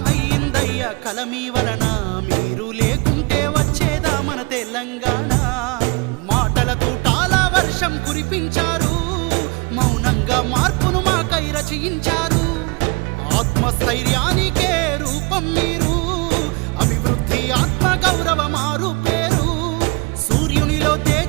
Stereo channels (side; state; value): left; quieter; 27.8 dB